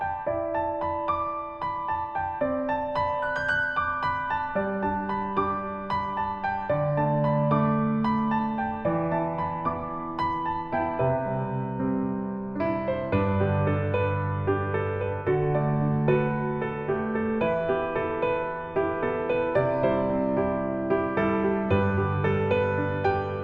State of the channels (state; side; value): noise; left; hum, 28 dB below the sound